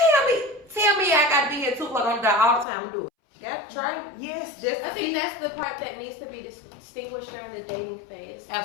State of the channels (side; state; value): right; drops out; at 2.7 s